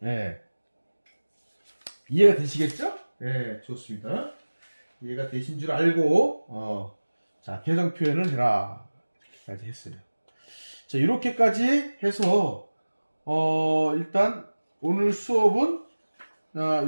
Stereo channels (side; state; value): both; inverted; correlation -1.00